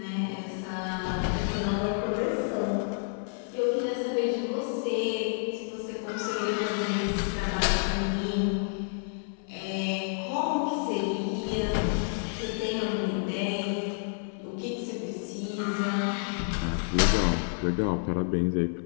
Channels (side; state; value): right; silent; 58 dB below the other